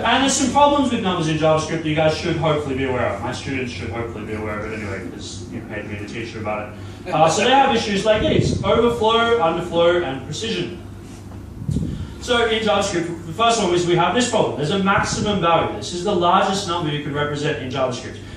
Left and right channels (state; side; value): identical; both; correlation 1.00